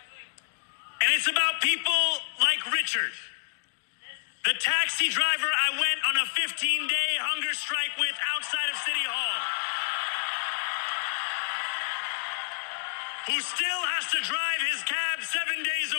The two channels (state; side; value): silent; right; digital silence